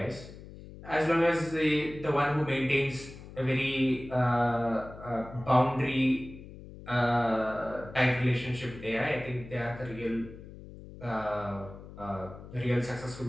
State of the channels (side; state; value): left; noise; hum, 15 dB below the sound